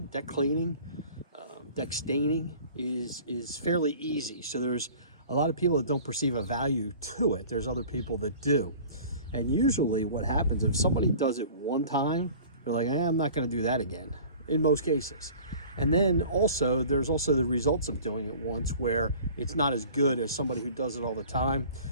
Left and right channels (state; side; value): inverted; both; correlation -0.46